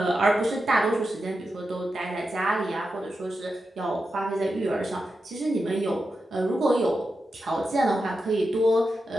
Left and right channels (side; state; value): both; normal; correlation 0.89